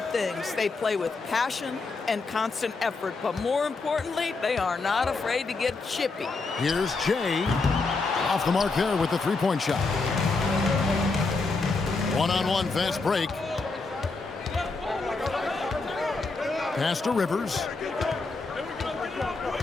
things. They play with passion and constant effort, but more importantly, they are not afraid to get chippy. Here's Jay, off the mark there with the three-point shot. One-on-one fast break. Pass to Rivers.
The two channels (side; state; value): right; quieter; 3.9 dB